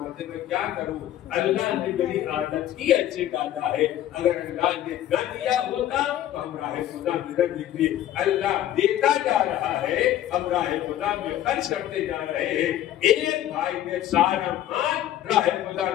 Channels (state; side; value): quieter; right; 12.3 dB